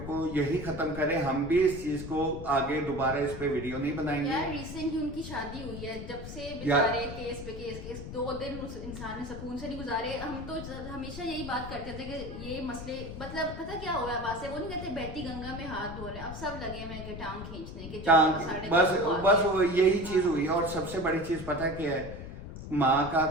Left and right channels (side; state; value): left; noise; rumble, 10 dB below the sound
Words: کو یہی ختم کریں. ہم بھی اس چیز کو آگے دوبارہ اس پہ ویڈیو نہیں بنائیں گے. یار ریسنٹ ہی ان کی شادی ہوئی ہے, جب سے بیچارے کیس پہ کیس 2 دن اس انسان نے سکون سے نہیں گزارے. ہم تو ہمیشہ یہی بات کرتے تھے کہ یہ مسئلے, مطلب پتہ کیا ہوا ہے بات سے, وہ نہیں کہتے بیٹی گنگا میں ہاتھ دھو رہے, اب سب لگے ہوئے کہ ٹانگ کھینچنے کے, بس یہی چیز ہوئی. اور سب سے بڑی چیز پتہ کیا ہے, ماں کا